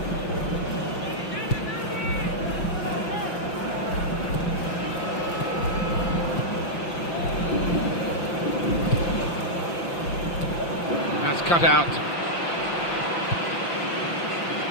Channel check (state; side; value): late; right; 5.8 ms